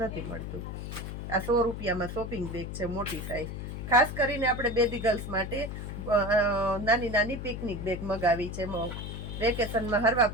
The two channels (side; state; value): left; noise; hum, 7 dB below the sound